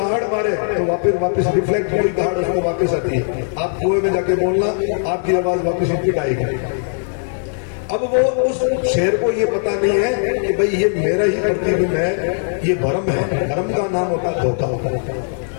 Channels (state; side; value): silent; right; 67 dB below the other